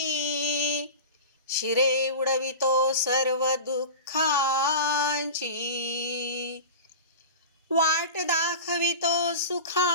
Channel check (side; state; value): both; inverted; correlation -0.30